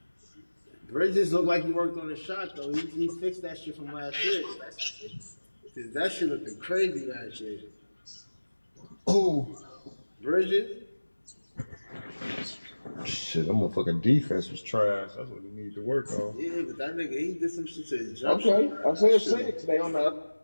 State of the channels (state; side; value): inverted; both; correlation -1.00